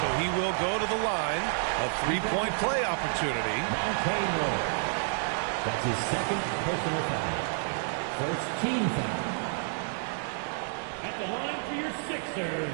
so he will go to the line. A 3-point play opportunity. That's his second personal foul. First team foul. At the line for your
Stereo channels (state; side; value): silent; left; 58 dB below the other